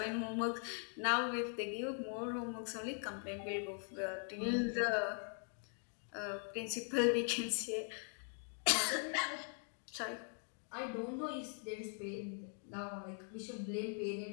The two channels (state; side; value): silent; right; 50 dB below the other